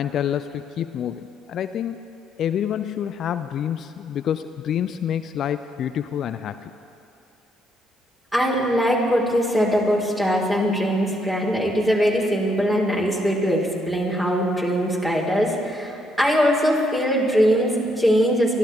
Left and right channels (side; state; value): both; normal; correlation 0.74